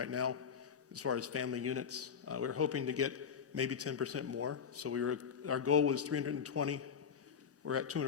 now as far as family units. We're hoping to get maybe 10% more. So our goal was 320. We're at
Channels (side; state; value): right; quieter; 7.0 dB